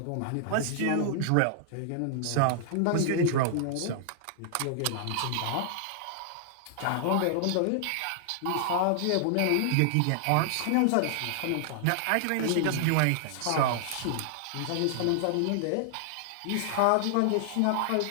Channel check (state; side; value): different; both; correlation -0.01